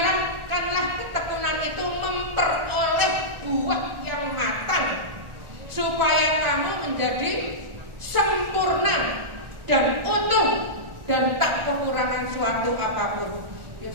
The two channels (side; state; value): left; late; 1.4 ms